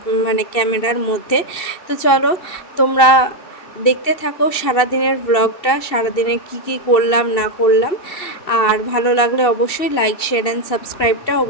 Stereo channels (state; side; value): late; right; 2.7 ms